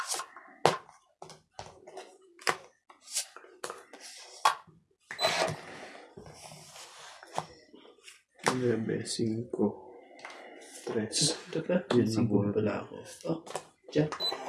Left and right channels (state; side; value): identical; both; correlation 1.00